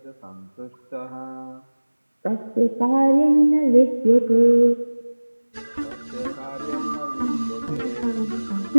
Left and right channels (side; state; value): both; inverted; correlation -1.00